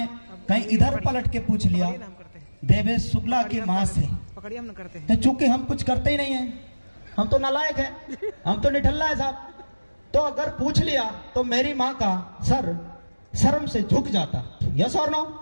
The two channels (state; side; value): inverted; both; correlation -1.00